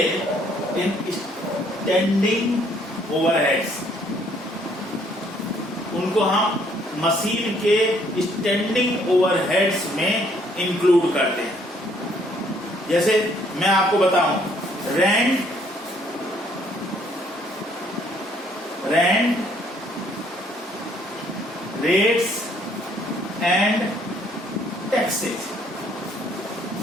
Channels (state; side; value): normal; both; correlation 0.65